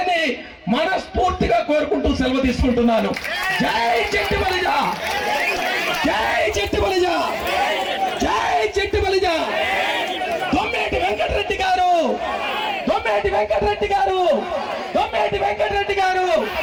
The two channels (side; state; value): both; identical; correlation 1.00